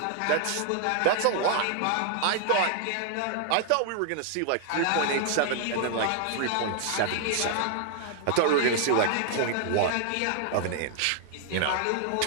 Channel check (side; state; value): both; different; correlation 0.00